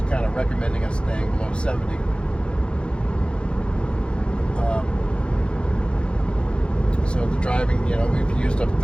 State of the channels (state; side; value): late; right; 0.056 ms